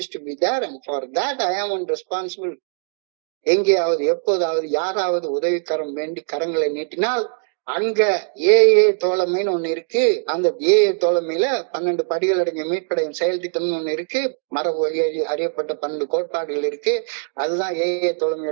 to be there, and for that I am responsible. எங்கேயாவது எப்போதாவது யாராவது உதவிக்கரம் வேண்டி கரங்களை நீட்டினால் அங்க ஏஏ தோழமைன்னு ஒண்ணு இருக்கு. அந்த ஏஏ தோழமையில 12 படிகள் அடங்கிய மீட்படையும் செயல் திட்டம்னு ஒண்ணு இருக்கு. மரபு வழி அறியப்பட்ட 12 கோட்பாடுகள் இருக்கு. அதுதான் ஏஏ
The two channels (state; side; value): silent; left; digital silence